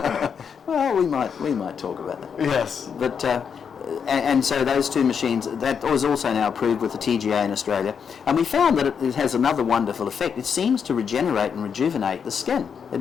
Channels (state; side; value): quieter; right; 6.9 dB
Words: Well, we might talk about that. Yes. But and so those 2 machines, that was also now approved with the TGA in Australia, and we found that it has another wonderful effect. It seems to regenerate and rejuvenate the skin. It